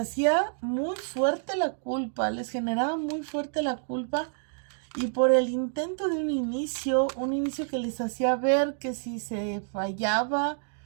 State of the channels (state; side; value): silent; left; digital silence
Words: muy fuerte la culpa, les generaba muy fuerte la culpa y por el intento de un inicio que les hacía ver que si se fallaba